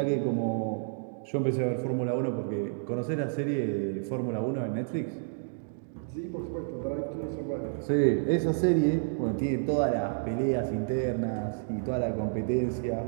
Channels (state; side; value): silent; left; digital silence